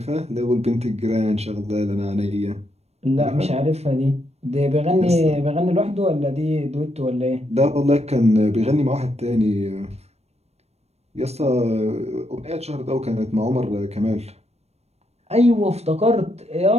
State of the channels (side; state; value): left; late; 0.31 ms